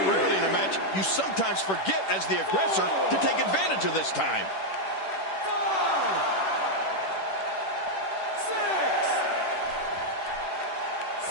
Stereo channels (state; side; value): late; right; 10 ms